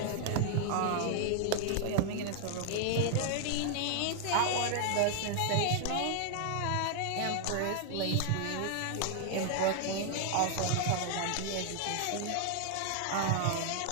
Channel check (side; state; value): both; different; correlation 0.00